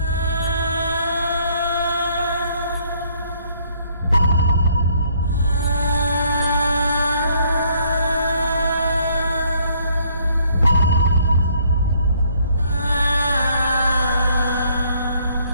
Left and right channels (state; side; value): inverted; both; correlation -0.64